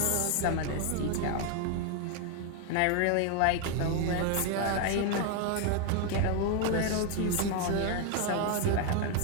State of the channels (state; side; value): different; both; correlation 0.01